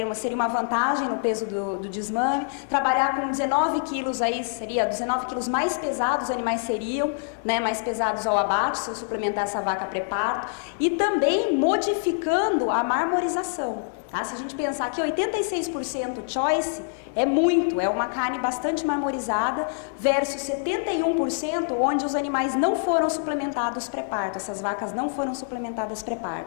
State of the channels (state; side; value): silent; right; digital silence